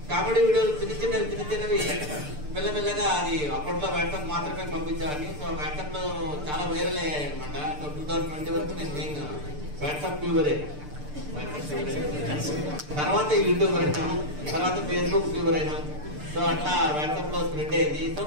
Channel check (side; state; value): left; late; 6.8 ms